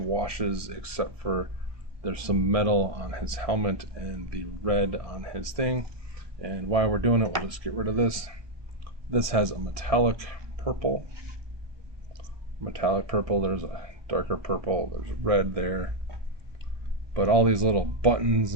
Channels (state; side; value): late; left; 1.2 ms